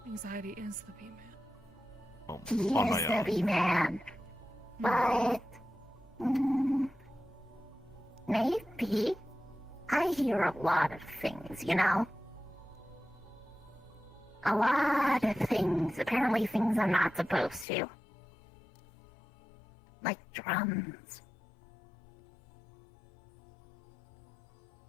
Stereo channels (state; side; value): drops out; right; at 17.7 s